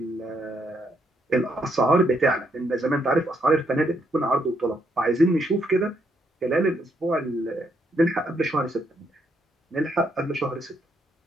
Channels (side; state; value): both; normal; correlation 0.75